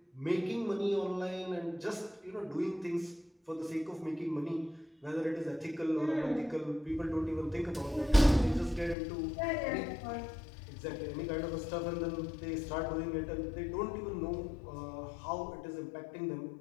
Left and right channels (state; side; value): drops out; right; at 9.0 s